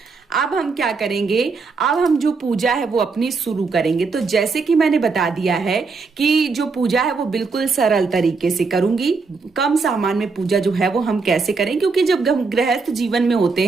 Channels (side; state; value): left; quieter; 4.5 dB